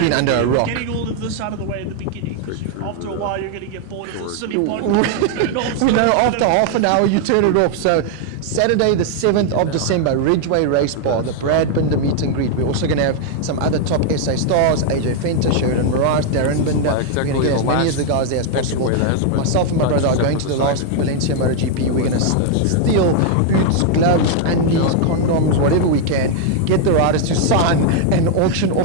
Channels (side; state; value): both; different; correlation 0.00